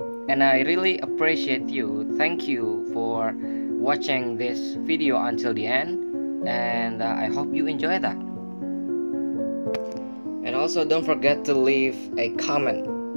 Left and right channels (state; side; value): inverted; both; correlation -1.00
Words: and I really appreciate you. Thank you for watching this video until the end, and I hope you enjoy that. And also don't forget to leave a comment,